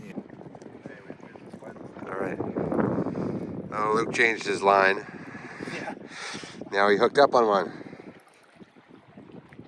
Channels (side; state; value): both; identical; correlation 1.00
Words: All right. Oh, Luke changed his line. Yeah. Now he hooked up on one.